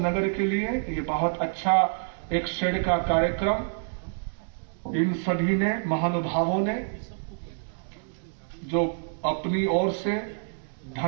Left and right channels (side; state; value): left; silent; digital silence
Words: के लिए ये बहुत अच्छा एक शेड का कार्यक्रम इन सभी ने, महानुभावों ने, जो अपनी ओर से